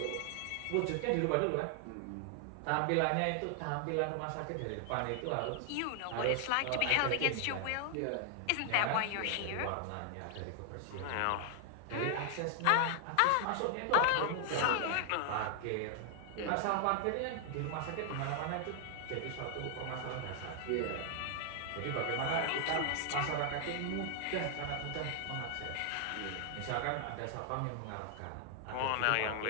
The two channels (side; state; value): both; different; correlation 0.00